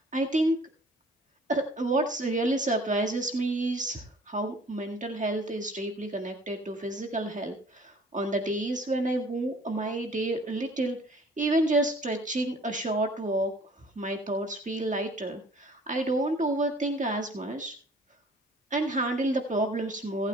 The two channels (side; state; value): both; normal; correlation 0.53